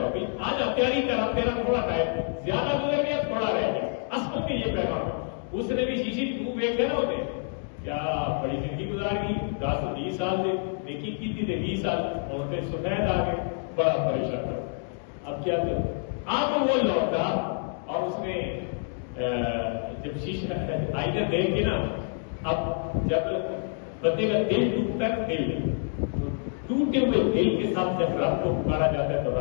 ہے. آج آپ تیاری کر, آپ تیرا تھوڑا ٹائم زیادہ گزر گیا, تھوڑا رہ گیا. اصل میں یہ پیغام ہے. اس نے بھی شیشی منہ دیکھ گیا نا, ہوتے کیا بڑی زندگی گزار گئی, 10-20 سال سے نیکی کی تھی, 20 سال اور سفید آ گئے, بڑا پریشان کر. اب کیا کریں؟ آپ وہ لوٹا اور اس نے جب شیشہ آئینہ دیکھ کے نا, اب جب بندے کا دل ٹوٹتا ہے, دل ٹوٹے ہوئے دل کے ساتھ جب رب کو پکارا جاتا ہے تو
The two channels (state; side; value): silent; right; 60 dB below the other